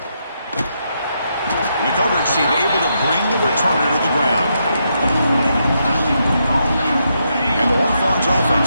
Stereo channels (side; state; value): both; inverted; correlation -0.80